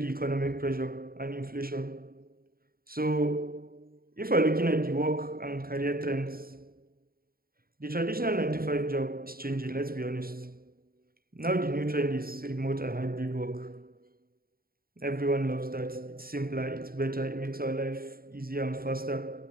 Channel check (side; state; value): left; late; 0.43 ms